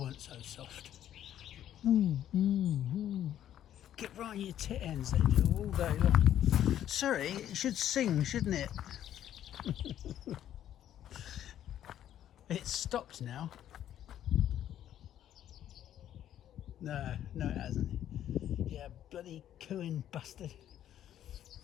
so soft. Get right on your tit ends, they do, all day long. Sorry, it should sing, shouldn't it? It's stopped now. No, it hasn't. Yeah, bloody cooing bastard.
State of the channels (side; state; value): right; quieter; 11.2 dB